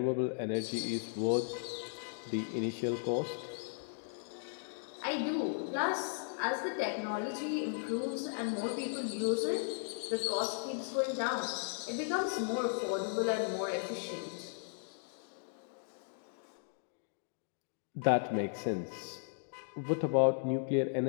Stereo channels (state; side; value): silent; right; digital silence